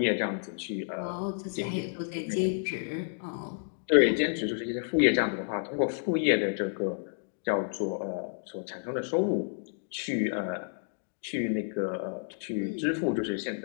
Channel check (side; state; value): right; silent; digital silence